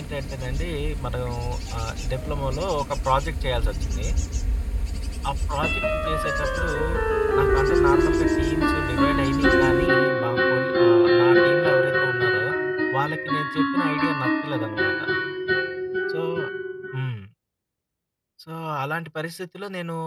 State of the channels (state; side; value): identical; both; correlation 1.00